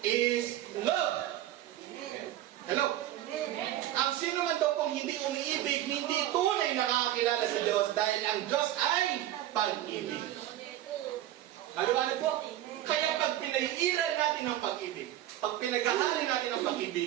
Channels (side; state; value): left; quieter; 13.4 dB